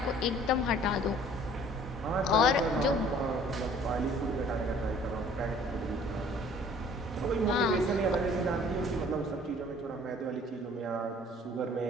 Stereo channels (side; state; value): both; normal; correlation 0.53